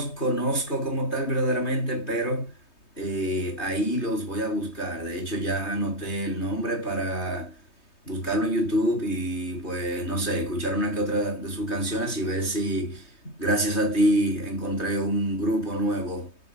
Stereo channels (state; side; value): late; right; 3.2 ms